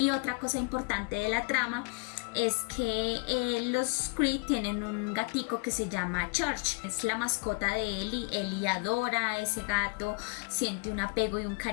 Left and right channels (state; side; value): quieter; right; 35.2 dB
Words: otra cosa importante de la trama es que los Creed tienen un gatico que se llama Church. Es la mascota de Ellie. Ellie adora a ese gato, siente un apego y un